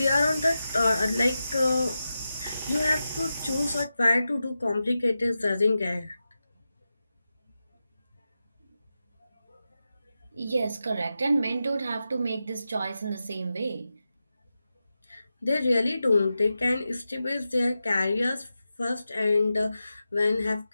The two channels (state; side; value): inverted; both; correlation -0.91